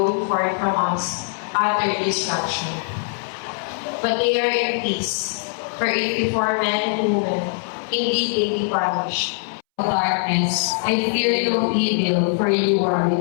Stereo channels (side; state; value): right; silent; 64 dB below the other